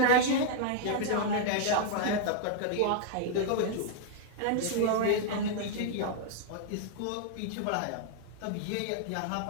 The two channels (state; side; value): different; both; correlation 0.00